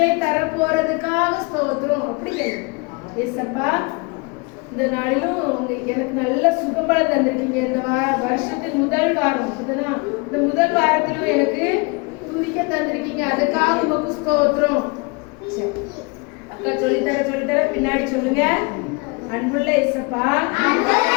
தர போறதுக்காக ஸ்தோத்திரம். அப்படி கேளுங்க. ஏசப்பா இந்த நாளிலும் எனக்கு நல்ல சுகம்பலம் தந்திருக்கீங்க. இந்த வருஷத்தின் முதல் வாரம் இந்த முதல் வாரத்திலும் எனக்கு துதிக்க தந்திருக்கீங்க, அதுக்காக உமக்கு ஸ்தோத்திரம். அக்கா சொல்லித்தர பின்னாடி சொல்லுங்க. அன்புள்ள ஏசப்பா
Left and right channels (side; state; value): right; quieter; 29.5 dB